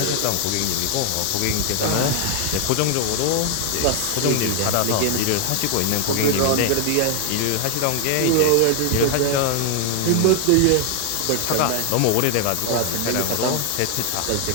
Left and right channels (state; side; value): different; both; correlation 0.00